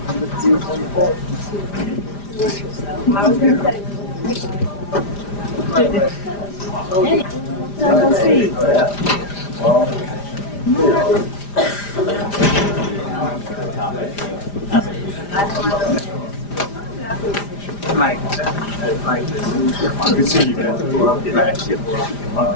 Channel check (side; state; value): right; late; 5.0 ms